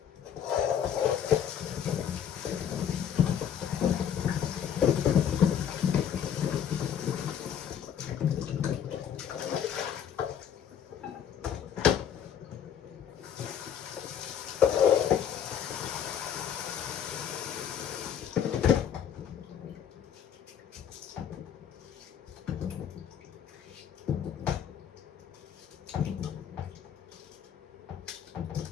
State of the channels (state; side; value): quieter; right; 8.7 dB